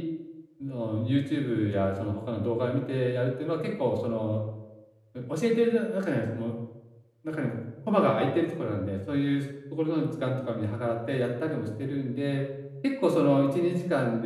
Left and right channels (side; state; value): both; identical; correlation 1.00